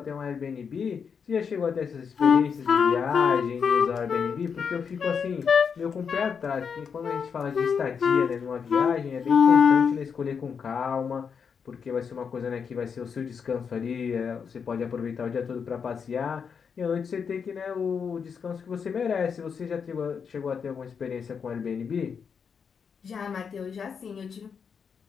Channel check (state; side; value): quieter; right; 6.4 dB